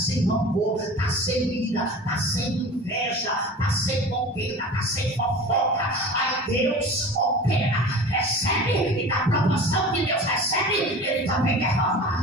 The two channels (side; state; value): both; normal; correlation 0.37